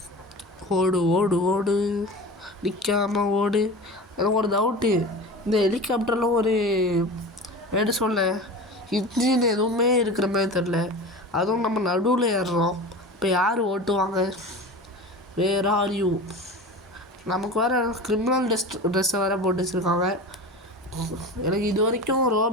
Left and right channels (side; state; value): both; normal; correlation 0.32